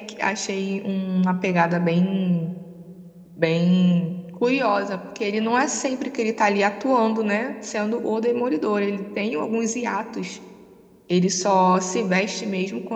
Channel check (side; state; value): both; identical; correlation 1.00